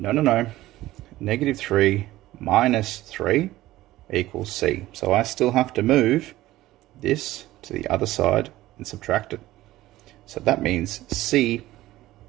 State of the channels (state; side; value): quieter; left; 16.2 dB